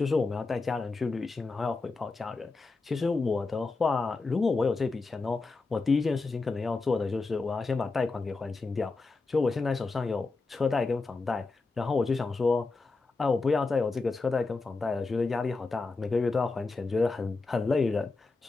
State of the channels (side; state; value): right; quieter; 3.8 dB